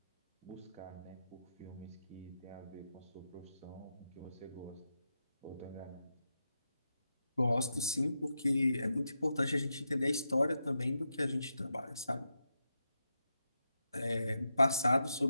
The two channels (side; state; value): both; inverted; correlation -0.86